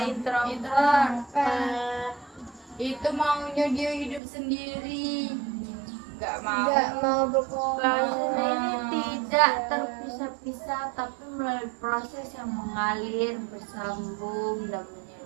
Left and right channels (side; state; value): left; drops out; at 4.2 s